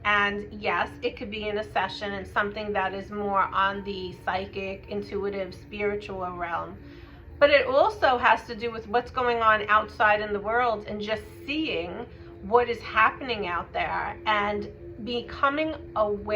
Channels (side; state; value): both; identical; correlation 1.00